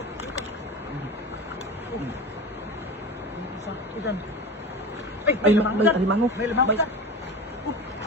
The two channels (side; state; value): both; normal; correlation 0.29